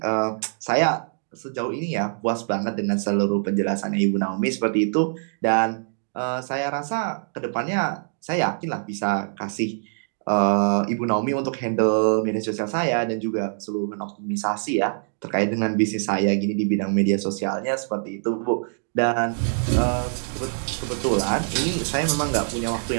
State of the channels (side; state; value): left; silent; digital silence